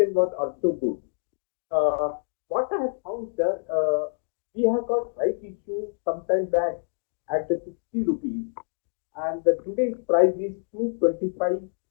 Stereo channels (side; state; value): right; silent; digital silence